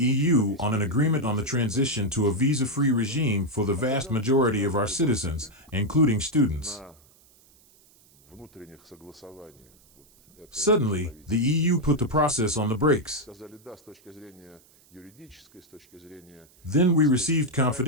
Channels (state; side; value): noise; right; hiss, 29 dB below the sound